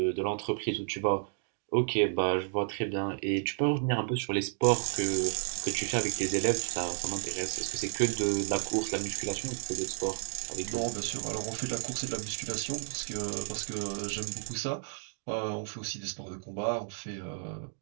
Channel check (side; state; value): left; silent; 56 dB below the other